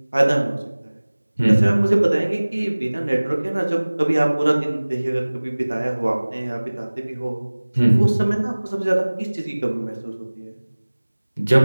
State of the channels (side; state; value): both; inverted; correlation -1.00